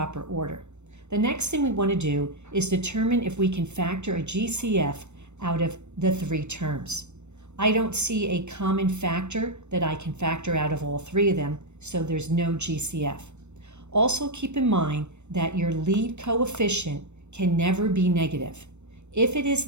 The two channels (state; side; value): late; left; 0.82 ms